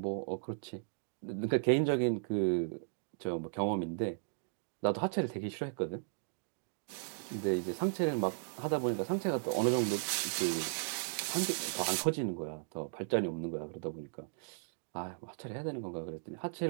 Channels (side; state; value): left; silent; digital silence